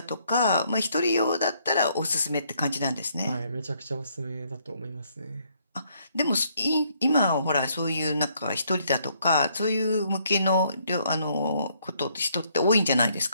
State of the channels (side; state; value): both; inverted; correlation -0.69